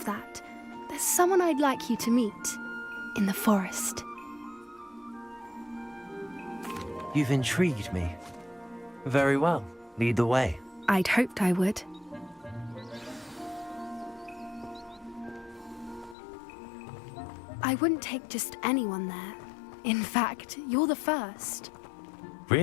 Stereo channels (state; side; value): drops out; right; at 16.2 s